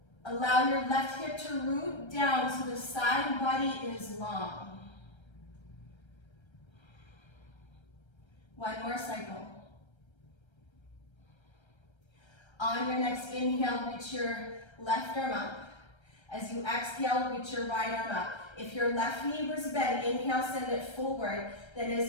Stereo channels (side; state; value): right; late; 1.3 ms